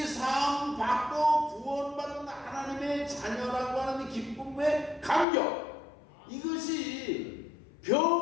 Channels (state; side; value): drops out; right; at 5.2 s